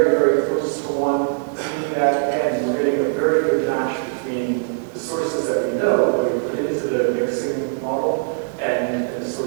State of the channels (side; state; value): left; silent; digital silence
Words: very close to 1, meaning that, again, we're getting a very good match between the sources that we know that we put into the mixing model and the